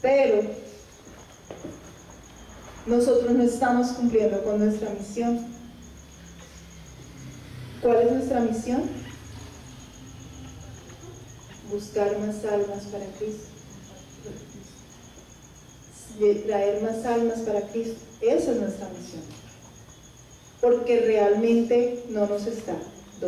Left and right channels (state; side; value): identical; both; correlation 1.00